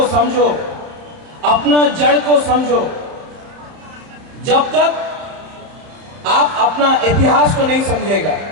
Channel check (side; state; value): left; late; 30 ms